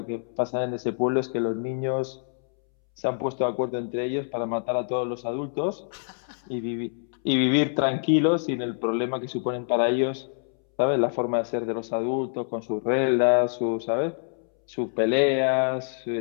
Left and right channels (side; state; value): right; silent; 61 dB below the other